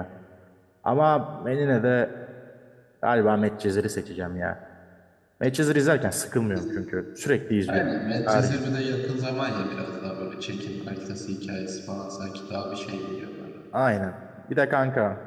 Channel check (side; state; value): both; identical; correlation 1.00